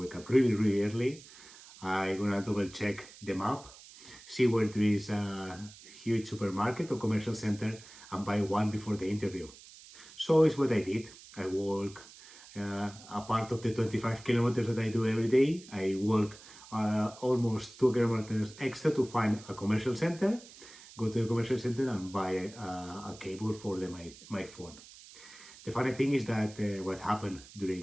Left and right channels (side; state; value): right; noise; hiss, 19 dB below the sound